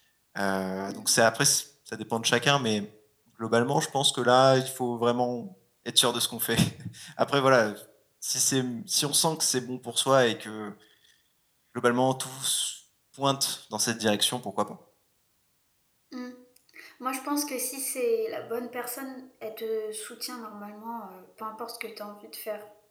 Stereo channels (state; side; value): identical; both; correlation 1.00